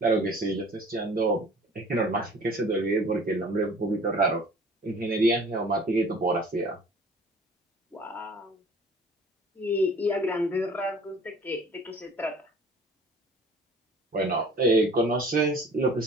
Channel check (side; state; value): both; normal; correlation 0.48